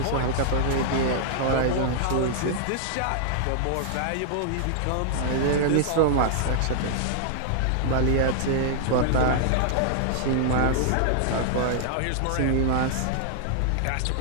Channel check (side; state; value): both; different; correlation -0.01